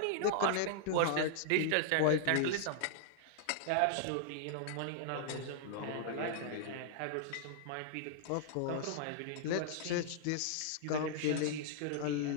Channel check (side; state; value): both; different; correlation -0.01